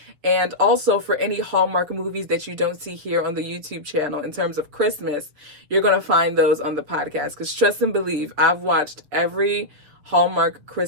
And also for any Hallmark movies that you don't see here on the YouTube channel in terms of Christmas, you're going to find those on the podcast. Because trust and believe, I've watched every Hallmark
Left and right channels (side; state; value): left; late; 7.1 ms